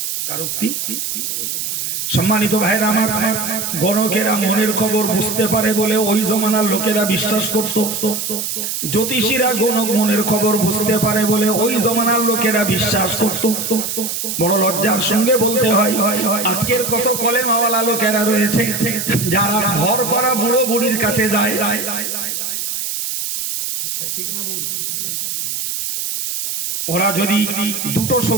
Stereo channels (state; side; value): noise; right; hiss, 3 dB below the sound